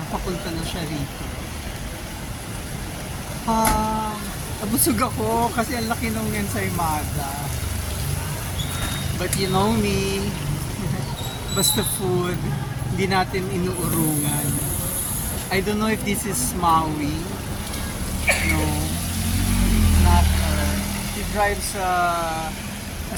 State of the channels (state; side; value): identical; both; correlation 1.00